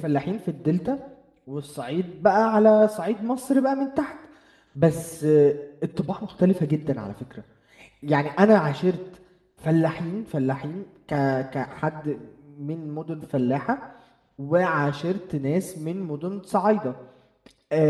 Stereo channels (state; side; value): identical; both; correlation 1.00